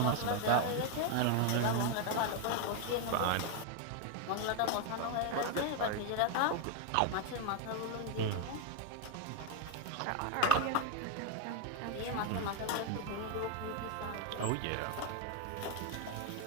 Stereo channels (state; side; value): different; both; correlation 0.02